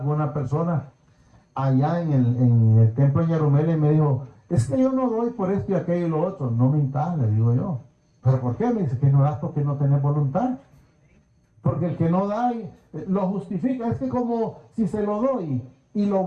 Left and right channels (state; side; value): identical; both; correlation 1.00